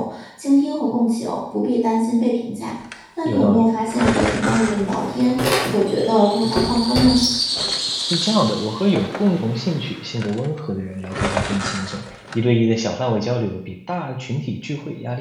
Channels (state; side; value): identical; both; correlation 1.00